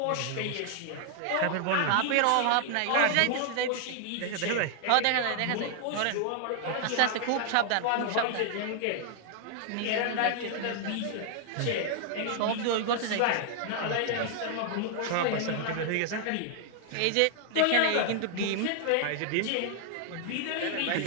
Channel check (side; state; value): both; different; correlation 0.00